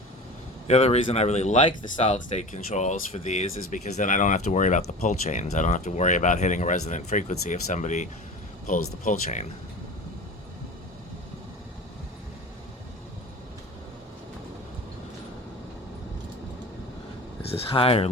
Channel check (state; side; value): normal; both; correlation 0.34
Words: The other reason I really like the solid state controls for these is because then I don't have to worry about the pull chains. I don't have to worry about hitting a resonant frequency if somebody pulls the pull chain. Is this high or